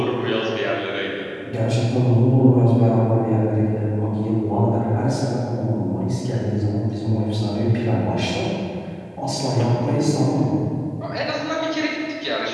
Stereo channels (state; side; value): identical; both; correlation 1.00